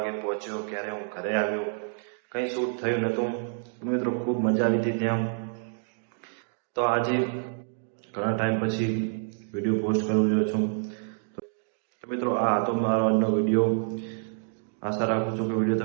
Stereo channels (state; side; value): silent; left; digital silence